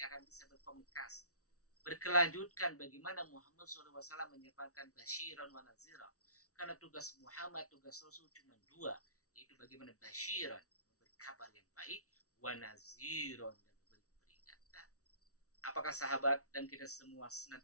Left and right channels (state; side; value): late; right; 0.65 ms